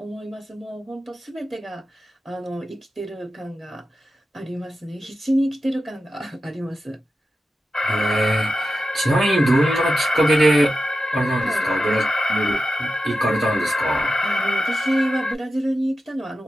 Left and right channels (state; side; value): normal; both; correlation 0.91